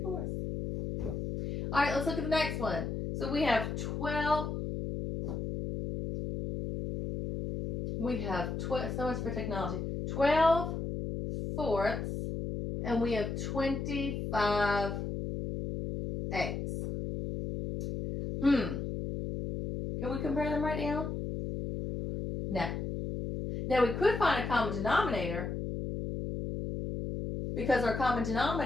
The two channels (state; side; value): noise; left; hum, 4 dB below the sound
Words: All right, let's look at the next one. So we have 12. We have 12, so much for technology. 12/4, and we have 25/8. Can we compare them right now? No. Now we could find a common denominator, because our common